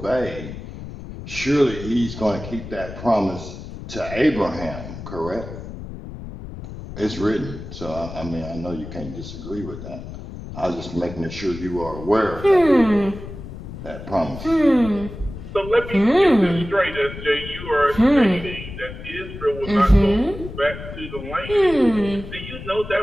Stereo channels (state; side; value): noise; left; rumble, 11 dB below the sound